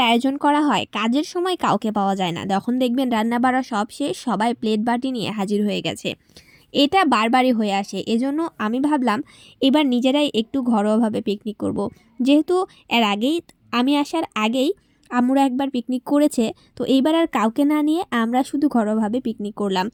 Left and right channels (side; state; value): both; identical; correlation 1.00